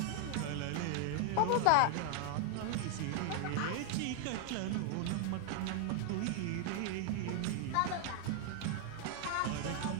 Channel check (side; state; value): both; different; correlation 0.00